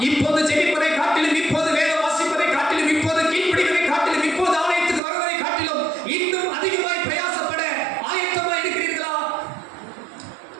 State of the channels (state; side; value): drops out; left; at 5.0 s